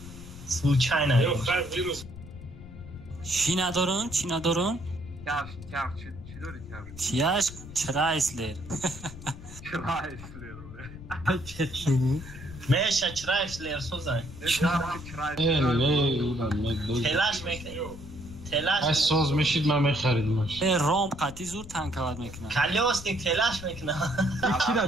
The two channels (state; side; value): noise; left; rumble, 14 dB below the sound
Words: Случайно. چی ندارن؟ چی ندارن؟ Çaj çi dori çaj. چیاش چرایسلر. Çrayisler. Meşe çrayisler sozay. Telaş mekne. Telaş. Ay soz meşid ma mekharidmash. رام قطعی زور تنکواد میکنن. Kalyosnik telaş mekne.